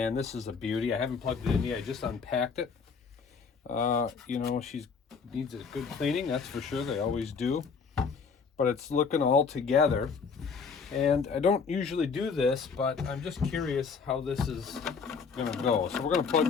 this is a beauty. I haven't plugged it in yet. I just unpacked it. You know, she needs a good cleaning, that's for sure. They always do. But it's looking all together. And I don't usually do this, but I'm just curious how this is going to go. So we're going to plug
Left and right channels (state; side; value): quieter; right; 5.5 dB